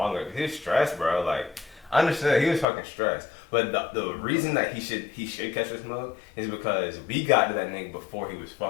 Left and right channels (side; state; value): right; drops out; at 2.7 s